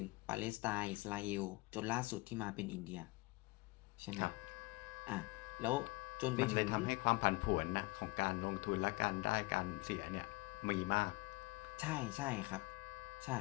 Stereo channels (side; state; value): right; quieter; 23.6 dB